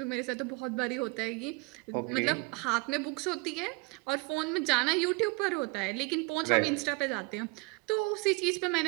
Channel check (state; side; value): quieter; left; 28.7 dB